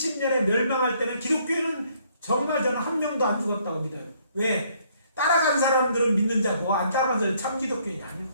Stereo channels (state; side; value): inverted; both; correlation -0.66